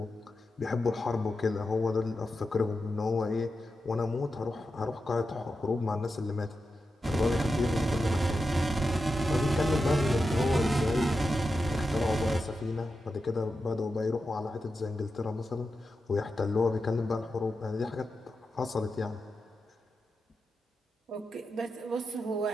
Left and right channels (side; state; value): both; normal; correlation 0.89